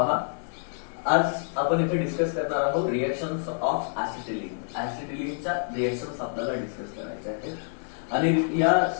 आज आपण इथे डिस्कस करणार आहोत रिएक्शन्स ऑफ ऍसिटिलीन. ऍसिटिलीनच्या रिएक्शन्स आपल्याला डिस्कस करायच्या आहेत आणि या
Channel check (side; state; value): right; silent; digital silence